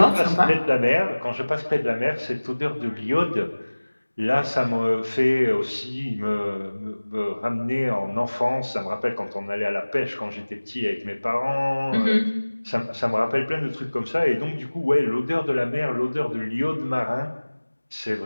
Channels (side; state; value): both; inverted; correlation -1.00